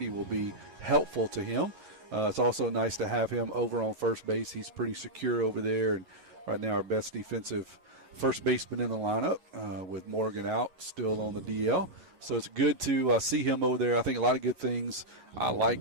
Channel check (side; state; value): left; late; 10 ms